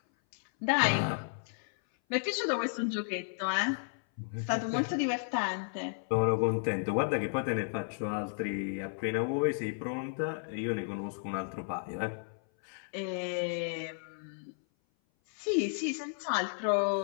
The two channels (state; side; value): silent; right; 56 dB below the other